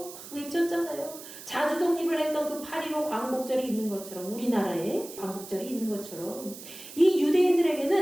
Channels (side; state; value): right; noise; hiss, 14 dB below the sound